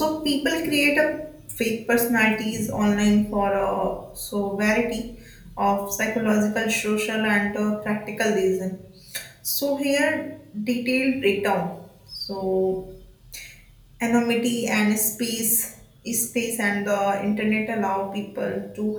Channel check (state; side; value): identical; both; correlation 1.00